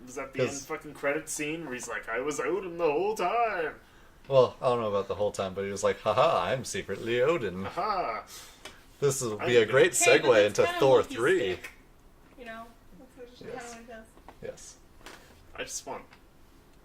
was that the end 'Cause- fucking credit scene where he's like, "I was Odin the whole time." Well, I don't know about the whole time, but he was like, haha, I'm secretly Odin. Aha! This will be I- a great Hey, but segue that's into kinda Thor Loki's 3. stick, that's just kind Yes. of what he does. Yes. I just want.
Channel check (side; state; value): both; identical; correlation 1.00